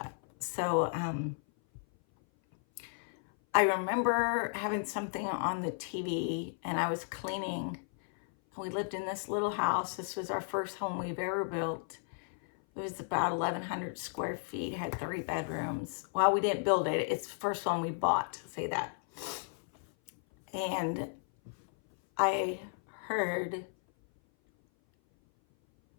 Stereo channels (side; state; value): right; silent; 55 dB below the other